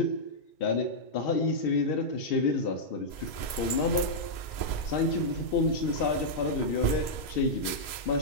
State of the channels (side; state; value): right; late; 2.0 ms